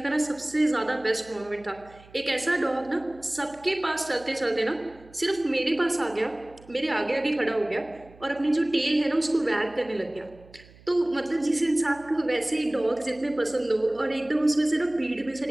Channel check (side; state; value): right; noise; hum, 24 dB below the sound